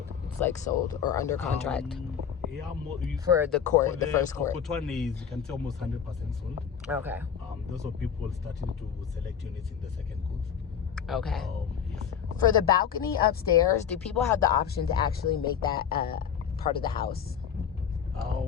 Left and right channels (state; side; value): quieter; right; 7.9 dB